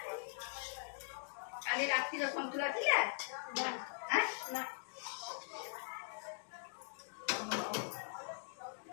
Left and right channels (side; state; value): right; silent; digital silence